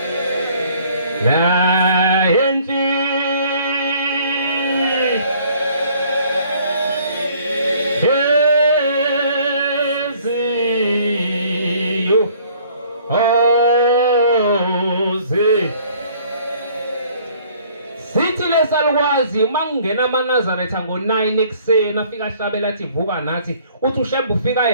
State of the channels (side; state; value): both; inverted; correlation -0.58